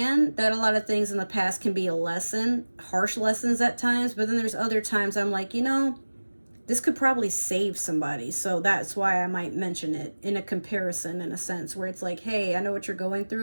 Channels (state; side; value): inverted; both; correlation -1.00